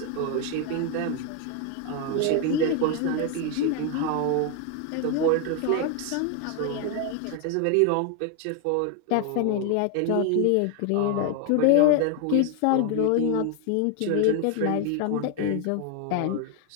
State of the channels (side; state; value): both; different; correlation 0.01